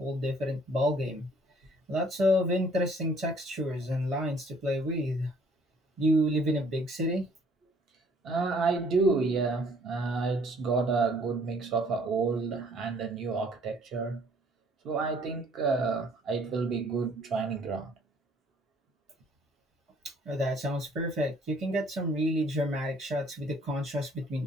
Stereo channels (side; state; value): both; normal; correlation 0.59